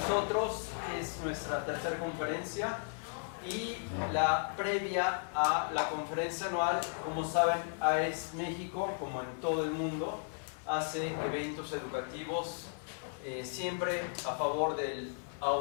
nosotros es nuestra tercera conferencia y la previa a la conferencia anual. Como saben, AES México, como en todo el mundo, hace eventos educativos siempre a favor del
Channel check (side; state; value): right; silent; digital silence